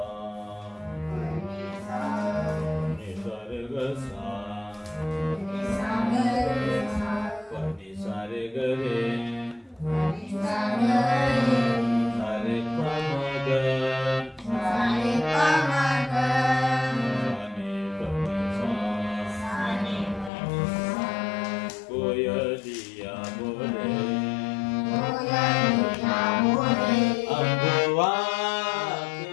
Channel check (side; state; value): right; drops out; at 20.3 s